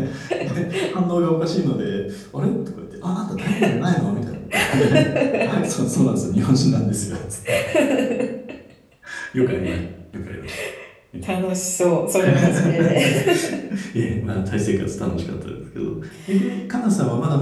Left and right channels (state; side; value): identical; both; correlation 1.00